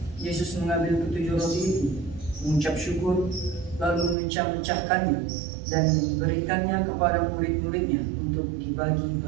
Yesus mengambil 7 roti itu, mengucap syukur, lalu memecah-mecahkannya dan memberikannya kepada murid-muridnya untuk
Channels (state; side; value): drops out; left; at 4.2 s